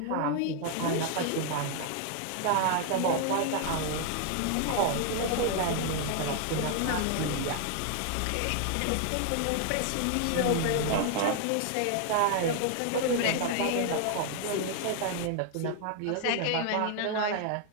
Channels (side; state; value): both; different; correlation 0.00